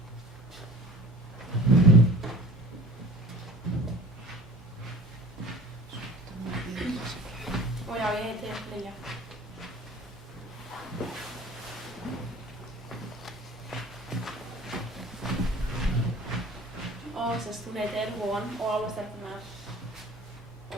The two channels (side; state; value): both; normal; correlation 0.45